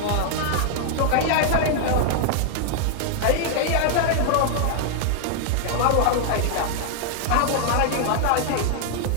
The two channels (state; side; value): different; both; correlation -0.01